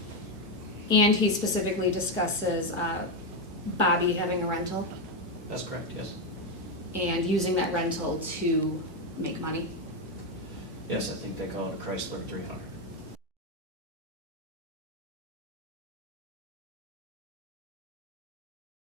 And he specifically discusses Bobby having a rental That's correct, yes. and using that rental to make money. Yes, I think they call it a Chrysler 300.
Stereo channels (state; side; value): normal; both; correlation 0.07